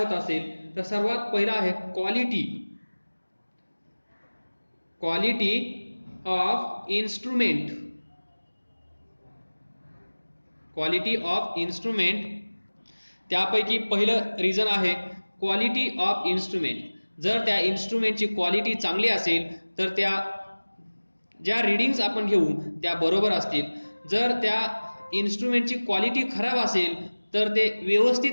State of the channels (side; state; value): both; inverted; correlation -1.00